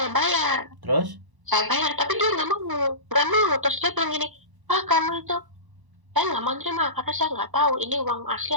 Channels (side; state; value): left; late; 1.0 ms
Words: bayar. Terus? Saya bayar, tapi dia nggak mau. Terus dia bilang gini, kamu itu saya nggak mau terima karena saya nggak tahu ini uang asli